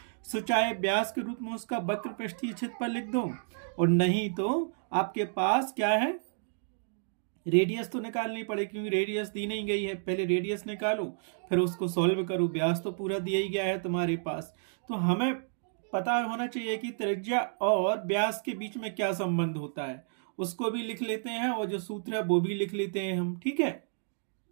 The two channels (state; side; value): silent; left; digital silence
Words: सो चाहे व्यास के रूप में उसका वक्र पृष्ठीय क्षेत्रफल लिख दो, और नहीं तो आपके पास क्या है? रेडियस तो निकालनी पड़ेगी, क्योंकि रेडियस दी नहीं गई है। पहले रेडियस निकालो, फिर उसको सॉल्व करो। व्यास तो पूरा दिया ही गया है तुम्हारे पास, तो हमें पता होना चाहिए कि त्रिज्या और व्यास के बीच में क्या संबंध होता है। उसको भी लिख लेते हैं, और जो सूत्र है वो भी लिख लेते हैं हम। ठीक है,